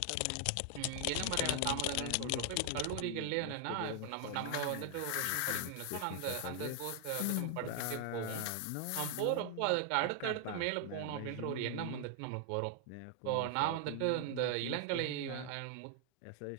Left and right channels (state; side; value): different; both; correlation 0.00